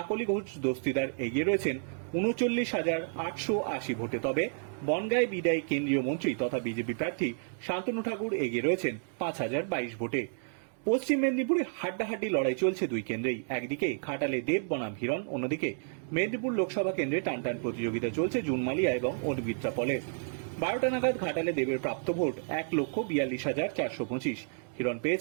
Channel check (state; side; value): silent; left; digital silence